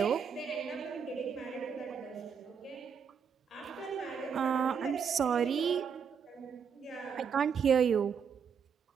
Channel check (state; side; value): quieter; left; 6.8 dB